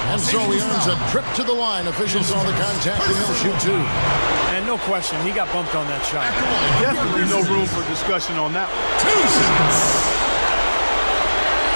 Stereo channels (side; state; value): both; inverted; correlation -1.00